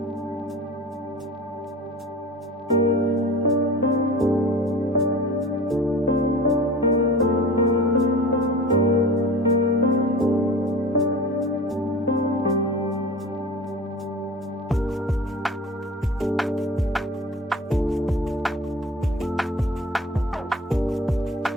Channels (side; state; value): both; normal; correlation 0.38